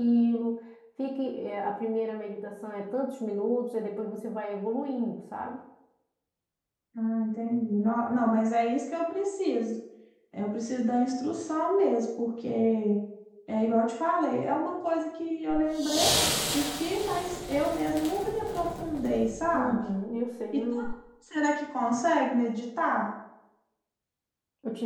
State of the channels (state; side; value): identical; both; correlation 1.00